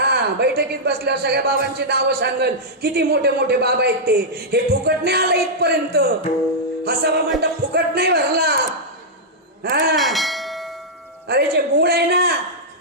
बैठकीत बसल्यावर सगळ्या बाबांची नावं सांगल. किती मोठे मोठे बाबा आहेत ते. हे फुकट नाही आलं इथपर्यंत. हसावा म्हणता फुकट नाही भरला. अरे जे मूळ आहे ना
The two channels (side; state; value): both; normal; correlation -0.09